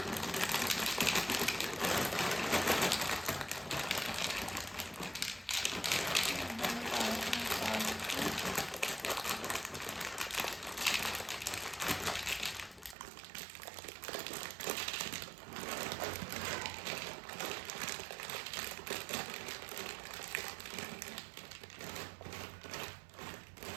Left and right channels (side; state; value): left; drops out; at 13.0 s